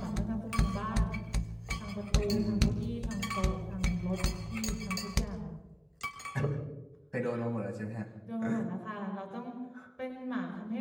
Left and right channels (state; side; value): identical; both; correlation 1.00